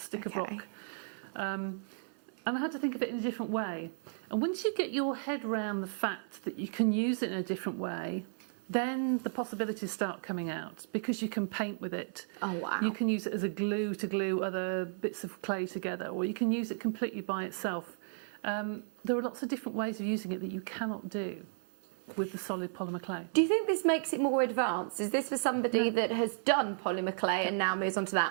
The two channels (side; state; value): left; silent; 55 dB below the other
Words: of rock. And I had to think of it in a different way. And once you get your head around the fact that you can use it in a different way, then the possibilities start coming out, because you can paint with it. Oh, wow. You can use it as a glue to glue other bits of clay together, or you can use it completely by itself. There are lots of different ways of using it that you cannot do with the solid polymer clay. Do you think this makes it more advanced? Is this for somebody that has done polymer clay and now moves on to